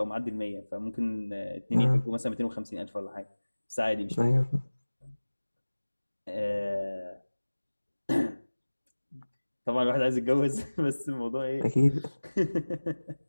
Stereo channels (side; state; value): both; inverted; correlation -1.00